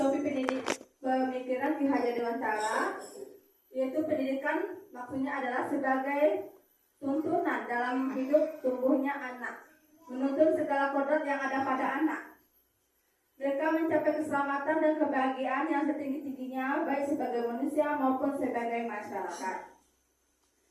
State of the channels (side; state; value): both; identical; correlation 1.00